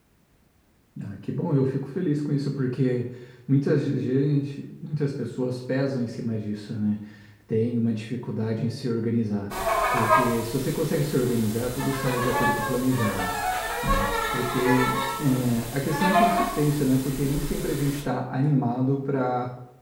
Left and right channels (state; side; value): identical; both; correlation 1.00